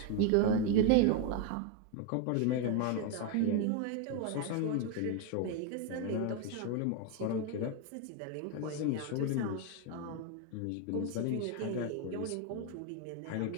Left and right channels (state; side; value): different; both; correlation 0.01